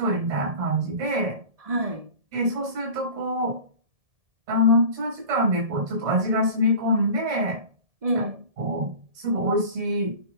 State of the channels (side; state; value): left; late; 1.7 ms